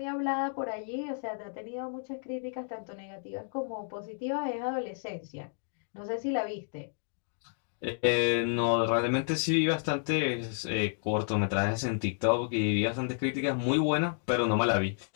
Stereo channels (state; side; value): silent; right; digital silence